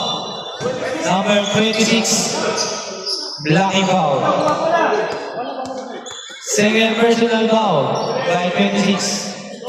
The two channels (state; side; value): identical; both; correlation 1.00